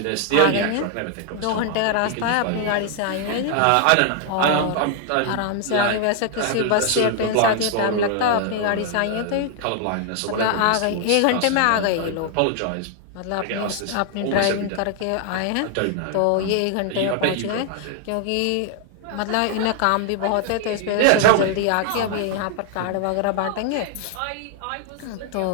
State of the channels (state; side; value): different; both; correlation 0.00